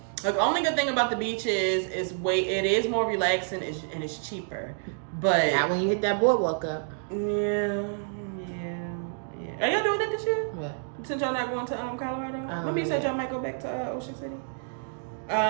Like, the only good thing about the beach is it is more relaxing and it's cheaper. But not when you hit that boardwalk up. Yeah. Are y'all doing that this year? What? Since y'all not going to Colorado? Remember you said y'all might go back to Ocean City?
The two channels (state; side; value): silent; left; digital silence